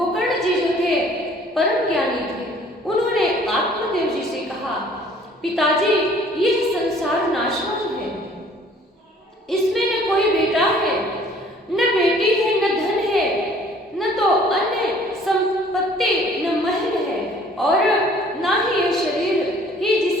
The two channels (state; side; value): normal; both; correlation 0.55